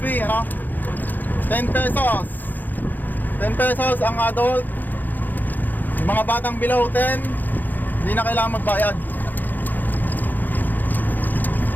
10 pesos. 10 pesos ang adult. Yung mga batang below 10, hindi na kailangan magbayad.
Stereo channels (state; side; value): late; right; 0.086 ms